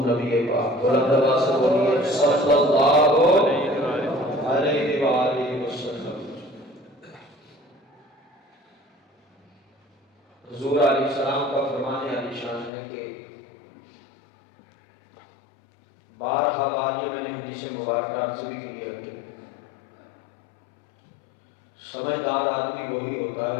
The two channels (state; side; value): drops out; right; at 12.7 s